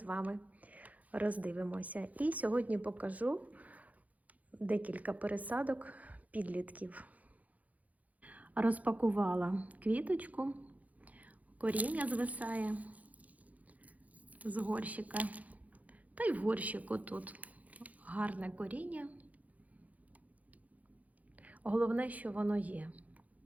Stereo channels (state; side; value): late; left; 0.074 ms